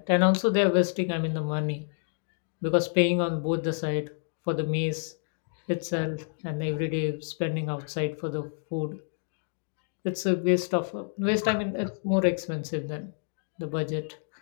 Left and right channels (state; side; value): silent; right; digital silence